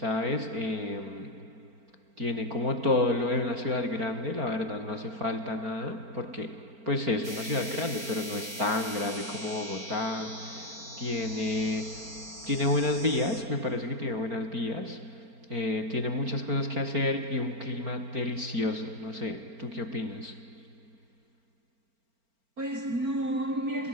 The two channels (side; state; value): left; late; 4.4 ms